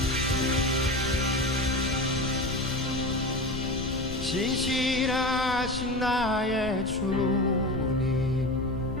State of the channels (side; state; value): left; noise; rumble, 12 dB below the sound